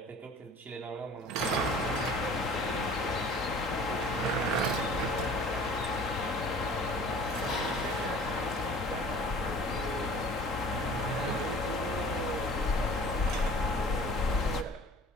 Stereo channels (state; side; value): normal; both; correlation 0.46